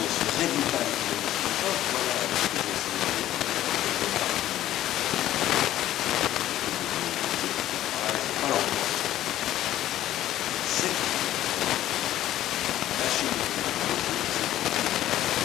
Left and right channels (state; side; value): quieter; right; 13.3 dB